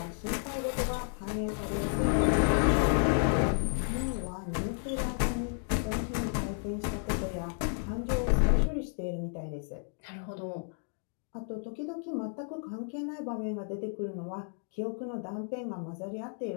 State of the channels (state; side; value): silent; right; 56 dB below the other